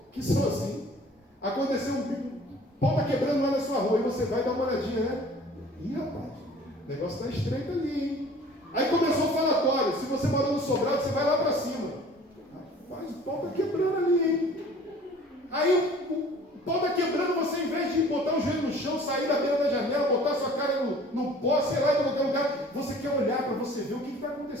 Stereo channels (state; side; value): normal; both; correlation 0.49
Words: que são assim. Aconteceu um pau está quebrando lá na sua rua, e você vai dar uma olhadinha, né? Ih, rapaz, o negócio está estreito ali, hein? Aí começou o falatório. Se você mora no sobrado, você vai lá para cima. Rapaz, o pau está quebrando ali, hein? Aí o pau está quebrando, você, em vez de botar o joelho no chão, sair da beira da janela, botar sua cara no pó, sei lá, em qualquer lugar, você quer olhar para você ver o que está